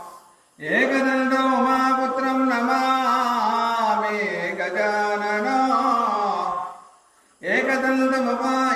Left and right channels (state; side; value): identical; both; correlation 1.00